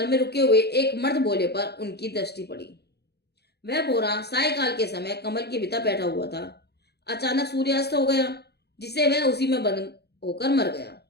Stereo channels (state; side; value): late; right; 0.48 ms